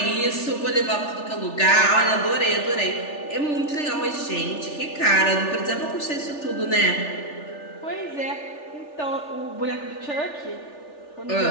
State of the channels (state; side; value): late; right; 3.4 ms